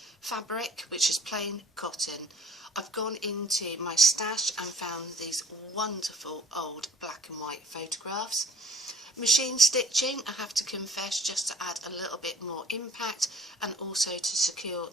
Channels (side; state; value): both; normal; correlation 0.49